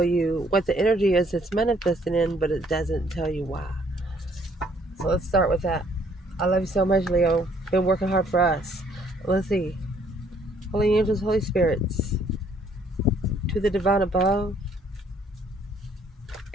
you what the energy is it's manifesting in, but it doesn't tell you why. So let's start with that. I love you so much, Leo. Been working hard for us. Let's see. Holy angels, Holy spirits, to the divine above,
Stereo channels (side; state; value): both; normal; correlation 0.64